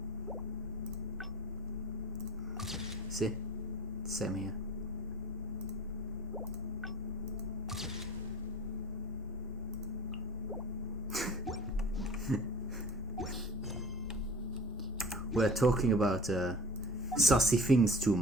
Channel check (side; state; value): both; normal; correlation 0.43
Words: See? Same here. We're talking about Sussy things too